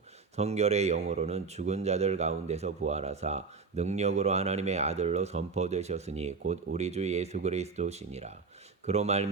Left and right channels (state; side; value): quieter; left; 4.9 dB